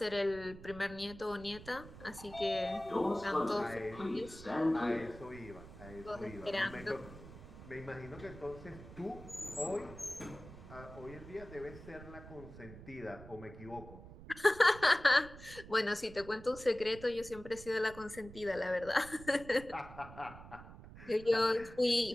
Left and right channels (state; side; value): noise; right; rumble, 15 dB below the sound